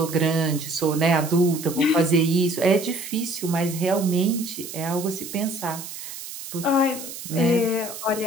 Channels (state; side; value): noise; right; hiss, 11 dB below the sound